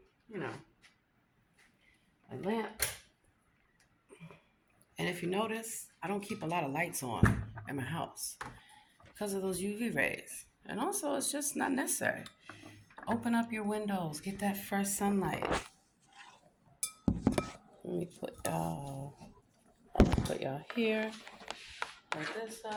you know, my lamp. And if you notice, I don't keep a lot of lights on in my house because of those UV rays. And also, it's just not necessary. Open up your windows. Get that fresh sunlight. Let me put y'all here. Put this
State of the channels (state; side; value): identical; both; correlation 1.00